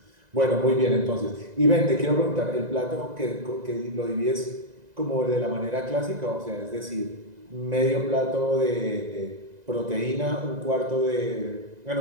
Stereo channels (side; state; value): left; late; 2.0 ms